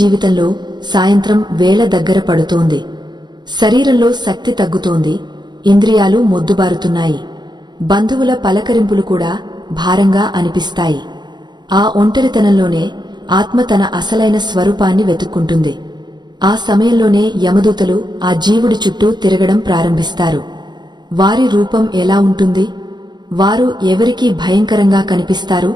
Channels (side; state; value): left; late; 0.21 ms